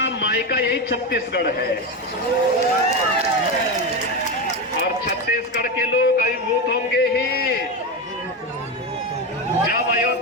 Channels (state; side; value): normal; both; correlation 0.16